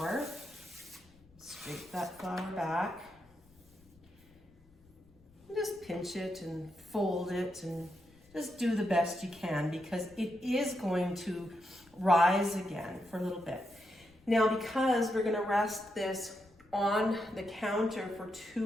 Scrape that flour back. And just pinch it and fold it and just do the best you can, because it is going to rise again for a little bit. Now, because we're gonna rest this on the counter for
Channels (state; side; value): noise; left; rumble, 28 dB below the sound